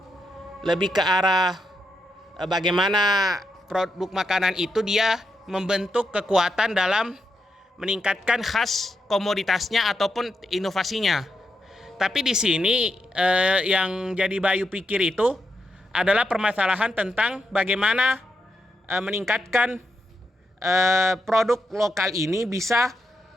lebih ke arah bagaimana produk makanan itu dia membentuk kekuatan dalam meningkatkan khas komoditasnya ataupun inovasinya. Tapi di sini yang jadi Bayu pikir itu adalah permasalahan tentang bagaimana meningkatkan produk lokal ini bisa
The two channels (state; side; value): normal; both; correlation 0.83